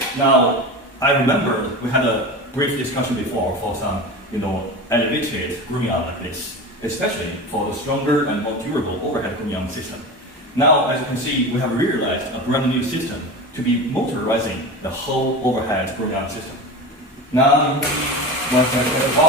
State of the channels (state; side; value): normal; both; correlation 0.28